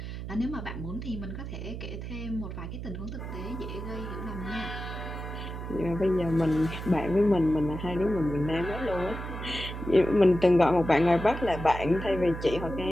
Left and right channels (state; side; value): noise; right; hum, 7 dB below the sound